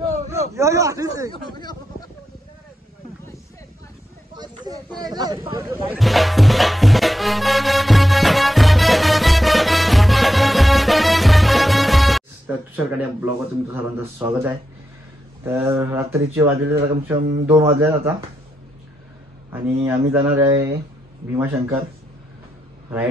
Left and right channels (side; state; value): both; normal; correlation 0.85